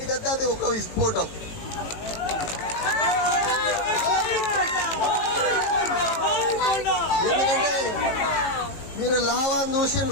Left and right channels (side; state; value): right; late; 18 ms